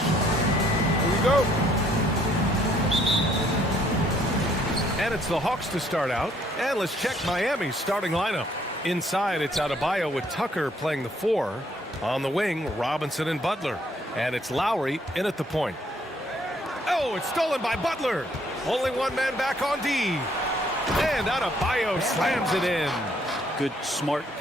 we go. And it's the Hawks to start out. And let's check Miami's starting lineup. Inside, it's Adebayo with Tucker playing the 4. On the wing, Robinson and Butler. And it's Lowry in at the point. Oh, it's stolen by Butler. Only one man back on D. And Adebayo slams it in. Good, smart,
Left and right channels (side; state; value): both; normal; correlation 0.66